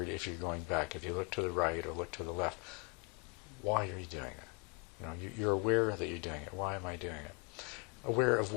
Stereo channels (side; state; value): right; quieter; 33.2 dB